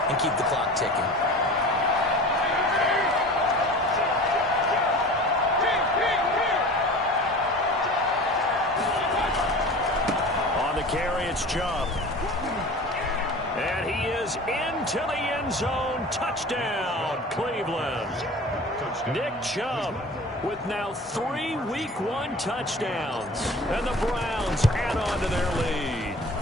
and keep the clock ticking. Carry, it's Chubb. And he is into the end zone. Touchdown, Cleveland. Nick Chubb with now 3 Week 1 touchdowns. And the Browns add on to their lead.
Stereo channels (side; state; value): both; normal; correlation 0.39